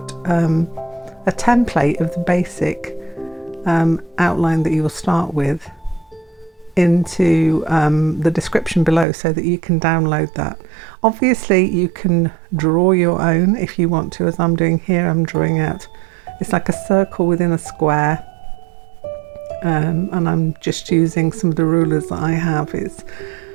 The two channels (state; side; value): drops out; left; at 9.1 s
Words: a template of the basic outline that you will start with into the description below so that you can download that. Obviously you can draw your own if you want to, as I'm doing here. I'm drawing out, it's like a circle within a square, and I'm just using some of the rulers that I have. It's